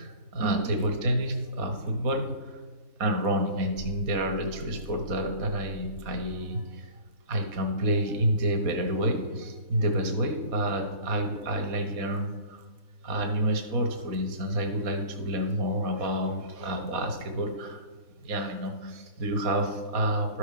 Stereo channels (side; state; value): left; late; 4.1 ms